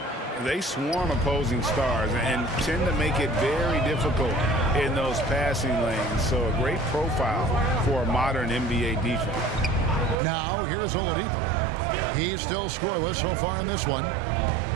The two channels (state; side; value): drops out; left; at 10.2 s